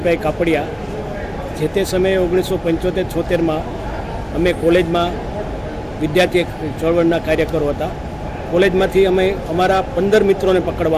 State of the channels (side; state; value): both; identical; correlation 1.00